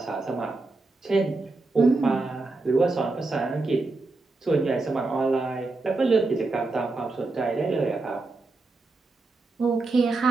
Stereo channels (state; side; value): quieter; left; 3.4 dB